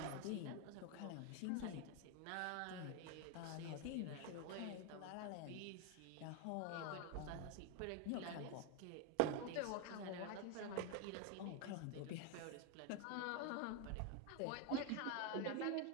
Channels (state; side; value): different; both; correlation 0.01